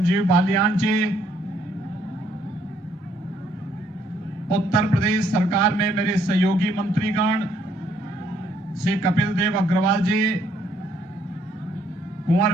बालियान जी, उत्तर प्रदेश सरकार में मेरे सहयोगी मंत्रीगण श्री कपिल देव अग्रवाल जी,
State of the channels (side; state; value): both; normal; correlation 0.68